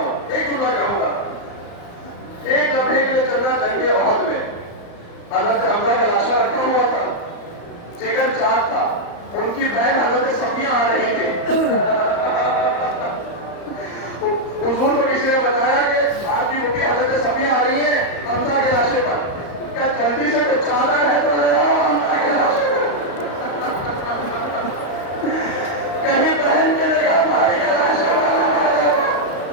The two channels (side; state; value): right; late; 35 ms